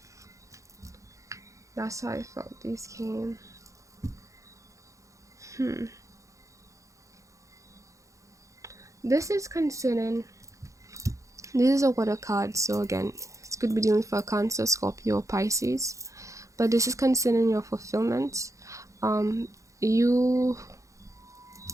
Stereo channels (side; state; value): left; late; 0.15 ms